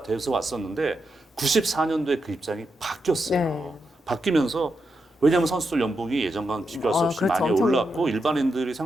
돼서 왔었는데 94년도에 그 입장이 바뀌었어요. 네. 바뀌면서 왜냐하면 선수들 연봉이 예전과는 비교할 수 없이 그렇죠. 많이 엄청 올랐고 일반인들이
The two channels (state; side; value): normal; both; correlation 0.85